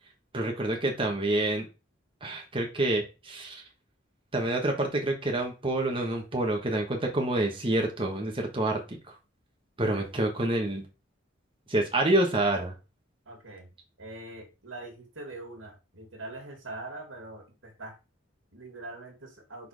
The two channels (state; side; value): normal; both; correlation 0.48